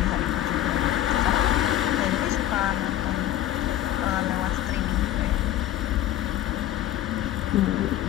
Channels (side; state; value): right; quieter; 12.9 dB